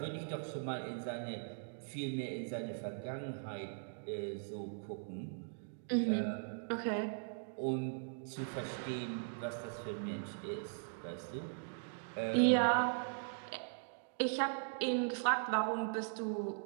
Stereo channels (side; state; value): left; silent; digital silence